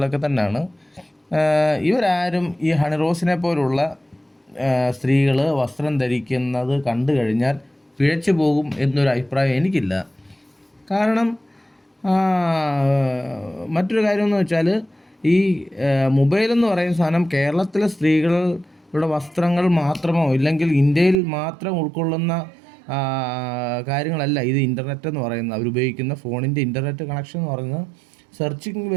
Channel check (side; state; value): left; drops out; at 21.2 s